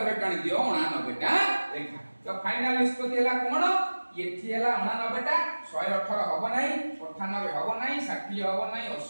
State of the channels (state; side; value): inverted; both; correlation -1.00